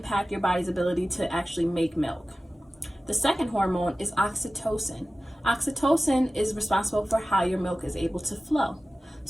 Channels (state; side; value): normal; both; correlation 0.96